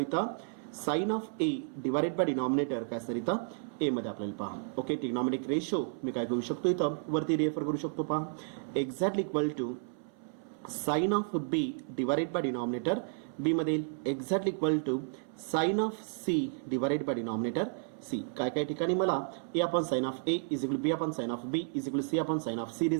इथं sine of A divided by denominator काय असणार इथं A मध्ये आपल्याला पहा. ओके, ट्रिग्नॉमेट्रिक रेशो मी काय करू शकतो इथं वरती रेफर करू शकतो पहा. Exactly equal to sine of B divided by denominator B मध्ये exactly equal to sine of C divided by denominator C. काय काय ठिकाणी मला A upon sine of A is equal B upon sine of B is equal C upon sine of C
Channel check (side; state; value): left; silent; 56 dB below the other